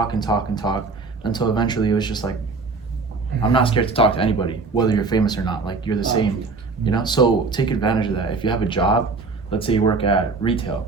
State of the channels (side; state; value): left; quieter; 4.2 dB